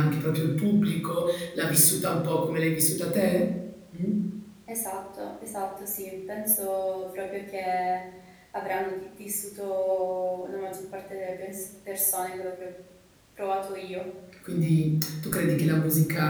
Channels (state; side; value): identical; both; correlation 1.00